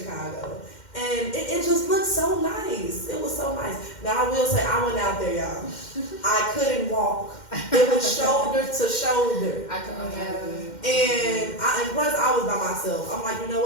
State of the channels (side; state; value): right; late; 2.1 ms